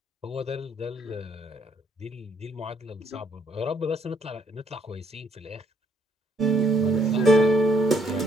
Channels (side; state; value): both; normal; correlation 0.69